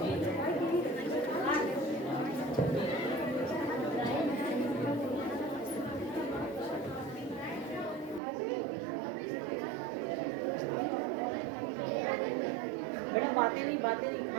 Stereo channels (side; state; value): left; drops out; at 8.2 s